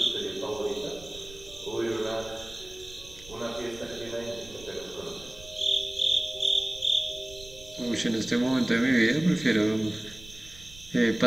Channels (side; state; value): right; noise; rumble, 19 dB below the sound